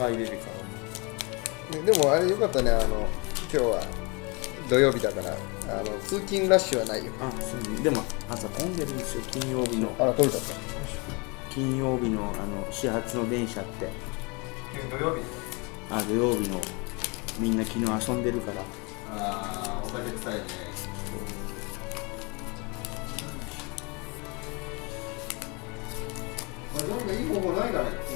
れるから。でもあれよかったね、今日は土曜日だから通勤ラッシュはないよ。そうでも朝混んでるんですよ、金曜日の。あら、取れちゃった。金曜日の始発の電車って。土曜日。土曜日のみんな昨日遊んでるから。お酒臭いね。なんかいい方法ないかね、こ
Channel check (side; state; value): right; quieter; 29.5 dB